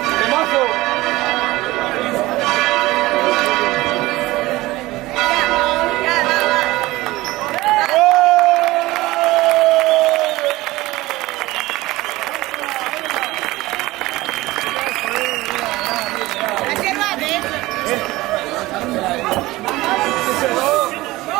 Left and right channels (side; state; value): left; quieter; 19.0 dB